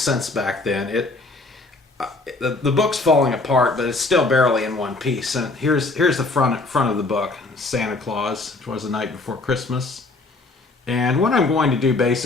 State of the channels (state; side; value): quieter; right; 3.3 dB